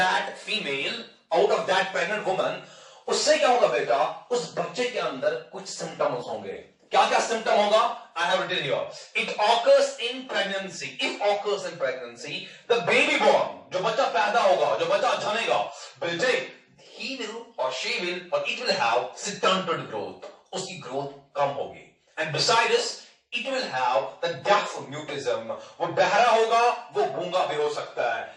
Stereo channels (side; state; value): both; identical; correlation 1.00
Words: female, out of that pregnant woman, उससे क्या होगा बेटा? उस बच्चे के अंदर कुछ symptoms होंगे. क्या क्या सिम्टम होगा? I have written here. It occurs in pregnancy. If occurs in pregnancy, the baby born, जो बच्चा पैदा होगा, जो बच्चा जनेगा, बेटे, he will or she will or it will have stunted growth. उसकी growth कम होगी. And besides, it will have the deaf mutism. वो बहरा होगा, वो गूंगा भी हो सकता है.